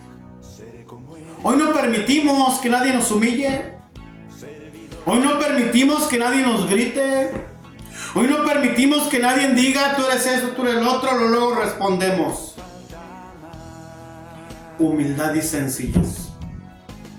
Hoy no permitimos que nadie nos humille. Hoy no permitimos que nadie nos grite. Hoy no permitimos que nadie diga, tú eres eso, tú eres el otro, luego respondemos. Humildad y sencillez.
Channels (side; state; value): both; identical; correlation 1.00